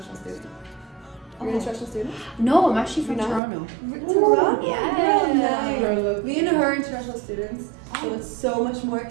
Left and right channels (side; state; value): left; drops out; at 3.4 s